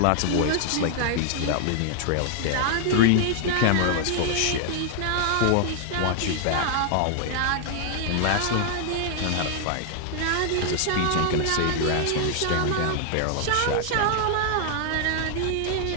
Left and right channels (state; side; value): different; both; correlation 0.00